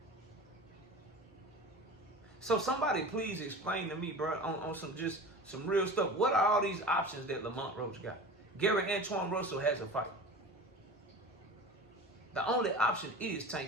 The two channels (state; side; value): normal; both; correlation 0.35